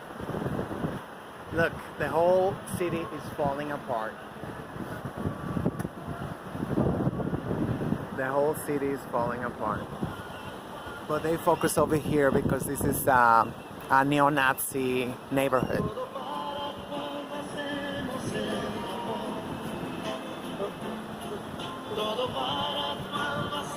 Look, the whole city is falling apart. The whole city is falling apart. But they focus over here because this is a neo-Nazi neighborhood.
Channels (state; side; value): identical; both; correlation 1.00